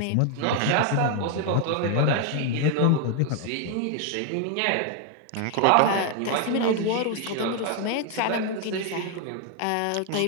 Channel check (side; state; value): both; different; correlation 0.00